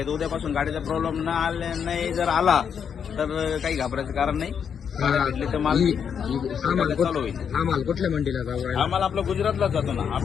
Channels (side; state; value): right; quieter; 7.4 dB